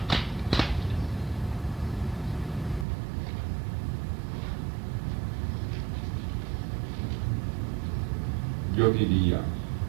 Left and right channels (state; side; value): drops out; left; at 2.9 s